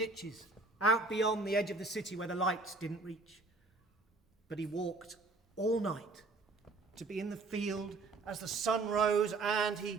out beyond the edge of the city where the lights didn't reach. But he walked all night to be in the field as the sun rose, and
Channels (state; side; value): quieter; left; 3.4 dB